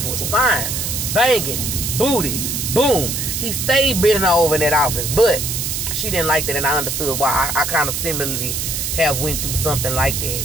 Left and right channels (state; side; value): noise; right; hiss, 2 dB below the sound